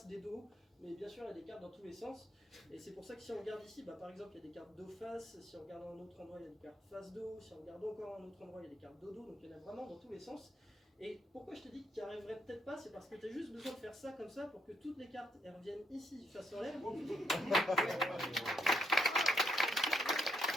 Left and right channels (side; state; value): both; normal; correlation 0.75